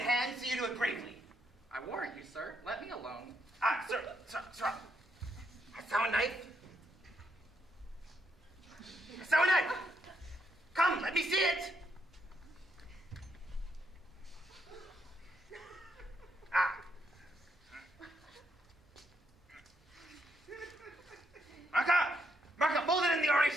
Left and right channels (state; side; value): normal; both; correlation 0.77